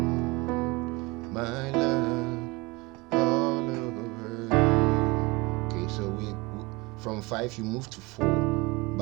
My love all over. Okay, so we from 5 you move to 4,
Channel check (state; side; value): quieter; left; 24.3 dB